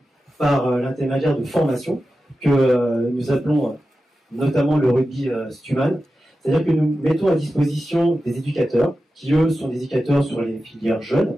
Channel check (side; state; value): both; normal; correlation 0.93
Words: ? Par l'intermédiaire de formations que nous appelons notamment le rugby Stuman, c'est-à-dire que nous mettons à disposition des éducateurs qui eux sont des éducateurs sur les filières jeunes,